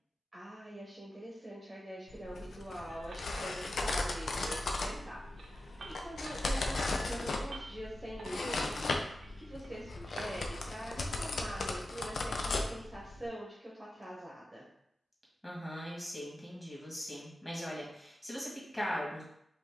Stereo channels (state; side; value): normal; both; correlation 0.92